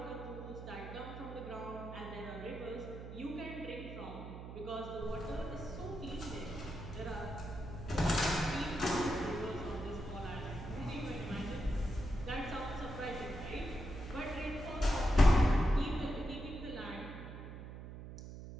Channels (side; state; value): right; noise; hum, 10 dB below the sound